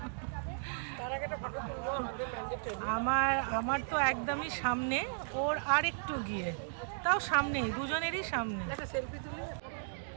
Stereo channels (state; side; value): silent; left; digital silence